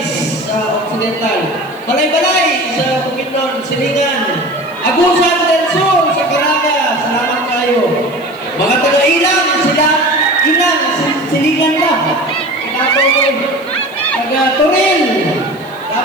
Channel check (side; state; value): right; noise; hiss, 28 dB below the sound